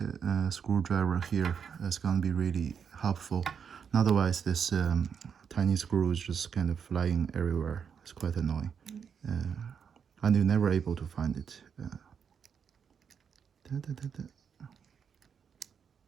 screwdriver here. It's gonna be really helpful. Otherwise, this tiny screw is just kind of flying everywhere. It's quite annoying, and you're never able to find it.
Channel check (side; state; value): left; quieter; 7.0 dB